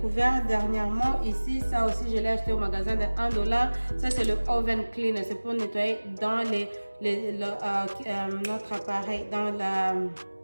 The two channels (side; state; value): both; inverted; correlation -1.00